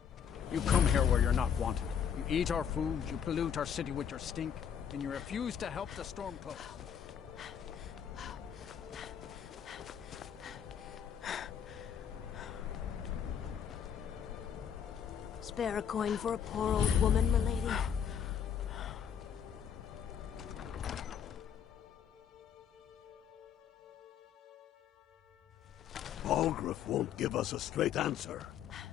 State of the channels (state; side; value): quieter; right; 8.3 dB